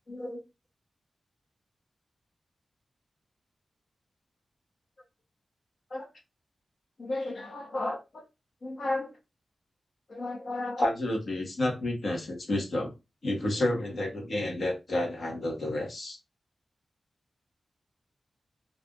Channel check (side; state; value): both; normal; correlation 0.91